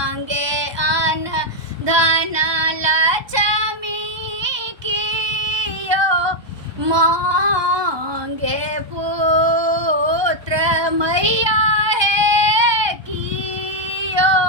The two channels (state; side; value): late; left; 1.2 ms